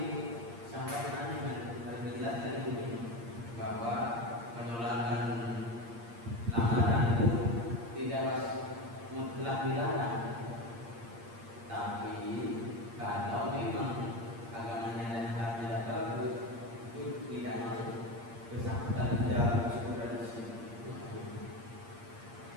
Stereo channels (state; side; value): late; left; 8.6 ms